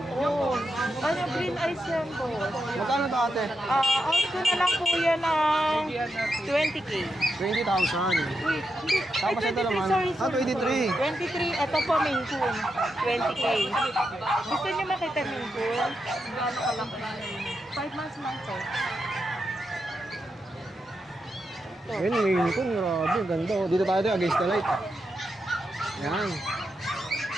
Oo. Ano, green eyes yan po. Magkano to, ate? Out ko na lang po yan ng 20K. 20,000. Wait, hindi. Tapos Ay, ito 23, naman. sorry. 23. 23, ito po Maine Coon. 20K. Gusto niyo makita Maine Coon? Gaano kalaki? 5 months lang po. Ayan, Maine Coon. Grabe, ganda, oh. Dito tayo against the light. Yan.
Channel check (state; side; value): normal; both; correlation 0.85